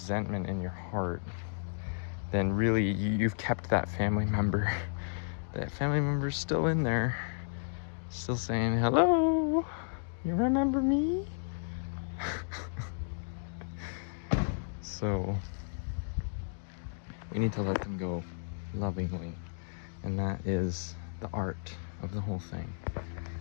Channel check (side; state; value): right; silent; digital silence